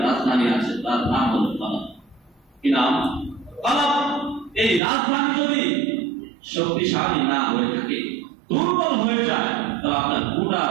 রাজধানী আছে, তার নাম হলো কলব। কি নাম? কলব। এই রাজধানী যদি শক্তিশালী না হয়ে থাকে, দুর্বল হয়ে যায়, তবে আপনার গোটা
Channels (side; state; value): left; drops out; at 4.8 s